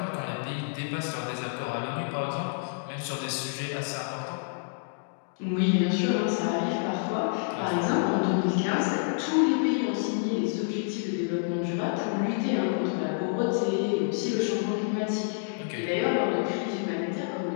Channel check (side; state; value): right; silent; digital silence